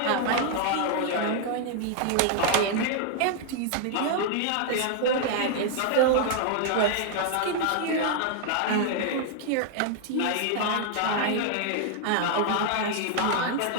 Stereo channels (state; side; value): different; both; correlation 0.00